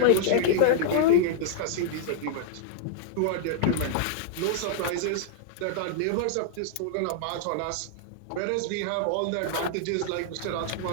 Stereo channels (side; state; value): both; different; correlation -0.01